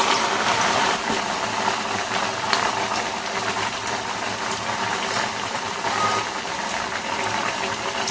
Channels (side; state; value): both; identical; correlation 1.00